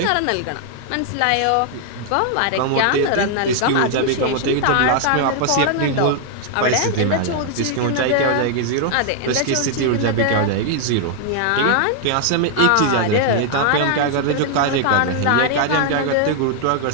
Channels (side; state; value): both; different; correlation 0.00